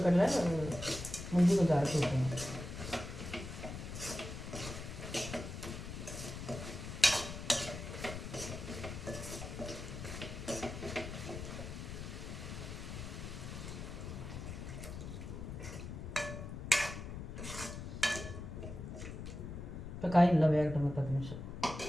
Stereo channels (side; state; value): left; noise; rumble, 8 dB below the sound